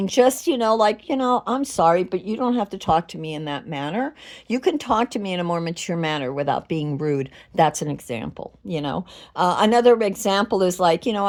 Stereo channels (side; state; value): both; identical; correlation 1.00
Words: just, like, I'm sorry, but you don't have to talk to me in that manner. You can talk to me in a more mature manner without being rude. That's an example. Another example is like,